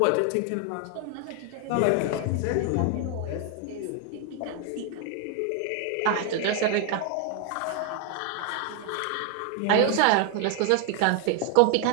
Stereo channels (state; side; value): different; both; correlation 0.01